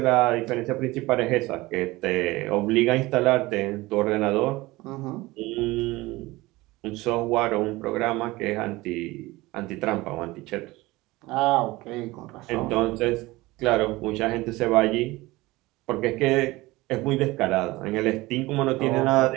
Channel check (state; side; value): quieter; left; 20.3 dB